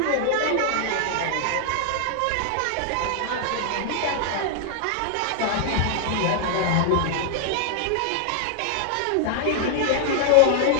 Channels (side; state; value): both; different; correlation -0.01